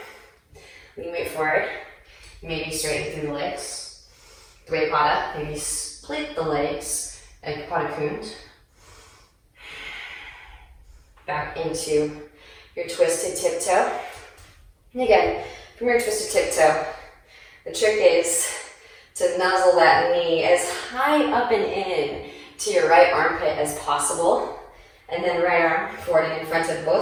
knee weight forward, maybe straighten through the legs. Dvipada, maybe split the legs, and Pada Kund. Back into your twisted tiptoe. And again, from your twisted tiptoe, the trick is to nuzzle that knee as high up and in to your right armpit as possible. And then right arm forward and in front of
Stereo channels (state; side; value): identical; both; correlation 1.00